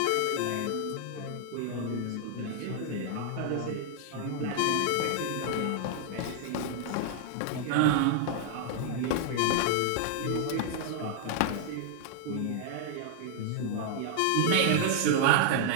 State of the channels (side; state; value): both; different; correlation 0.00